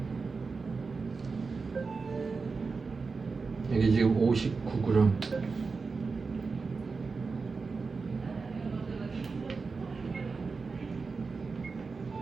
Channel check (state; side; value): quieter; left; 4.5 dB